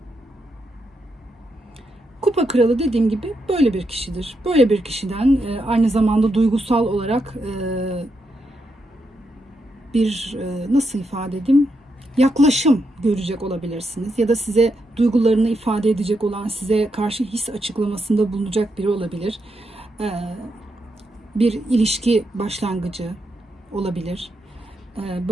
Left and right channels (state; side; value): normal; both; correlation 0.82